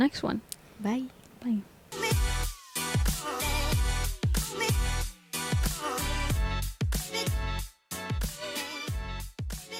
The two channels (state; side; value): identical; both; correlation 1.00